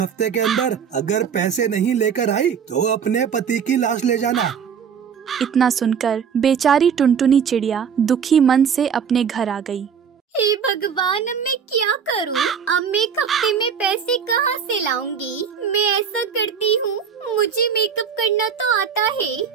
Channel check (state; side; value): quieter; left; 7.2 dB